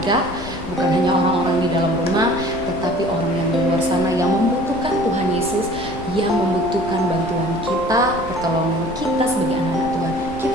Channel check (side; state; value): both; normal; correlation 0.48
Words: bukan hanya orang-orang di dalam rumah, tetapi orang yang di luar sana yang membutuhkan Tuhan Yesus, yang membutuhkan bantuan kita, pertolongan kita sebagai anak-anak Tuhan.